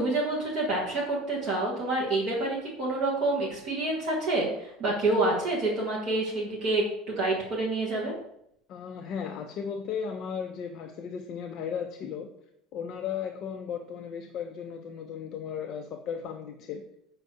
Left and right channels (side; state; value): both; normal; correlation 0.40